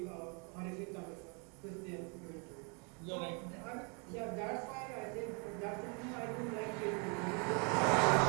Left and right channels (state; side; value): quieter; left; 35.4 dB